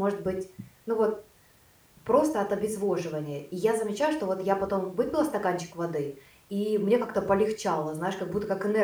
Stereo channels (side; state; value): both; identical; correlation 1.00